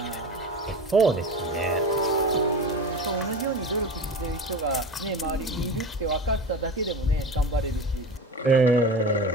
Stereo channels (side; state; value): both; normal; correlation 0.29